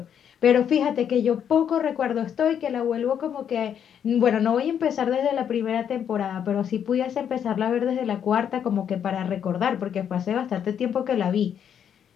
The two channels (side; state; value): right; quieter; 8.6 dB